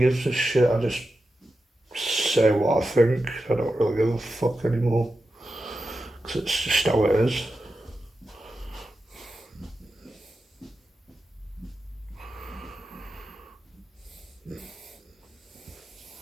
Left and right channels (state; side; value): normal; both; correlation 0.90